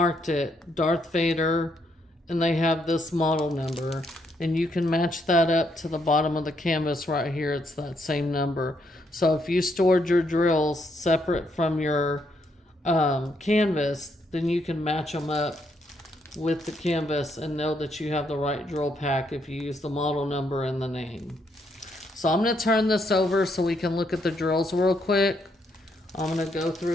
it Darth Vader, and they have this model number, and you can match that up to the bottom of the canvas right here. It's that same number. So if you stored your drills separate from your canvas, then you can match them up with the canvas and know that you have the right drill pack if you use the model number and the name. So I'm going to turn this over so we can look at the drills real quick. I'm going to go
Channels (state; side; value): normal; both; correlation 0.75